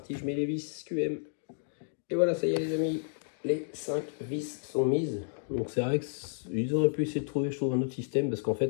je mets les vis QM. Et voilà, ça y est les amis, les 5 vis sont mises. Donc c'est vrai qu'ils auraient pu essayer de trouver, je trouve, un autre système, parce qu'en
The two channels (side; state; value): right; silent; digital silence